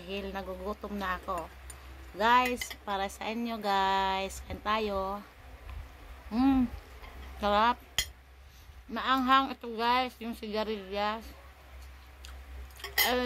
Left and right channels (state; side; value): identical; both; correlation 1.00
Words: nagugutom na ako. Guys, para sa inyo guys, kain tayo. Sarap. Maanghang ito guys, yung sigarilyas.